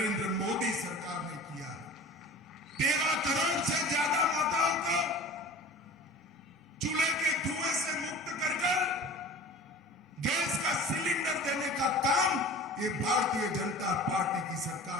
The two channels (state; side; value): normal; both; correlation 0.39